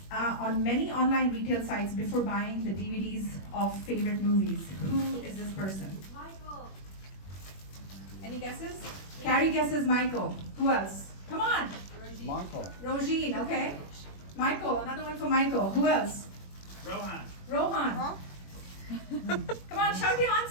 on many online retail sites before buying the DVDs of favorite movies. Who is this person? Michael. Any guesses? Carrie guesses Michael. Who else? Come on. Michael. Rogine, okay. Michael, another one for Michael. Who else? Rohan. Rohan. Come on, shout your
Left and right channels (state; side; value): late; right; 21 ms